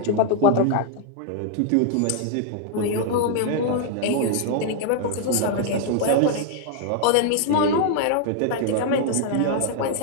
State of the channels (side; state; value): both; different; correlation 0.00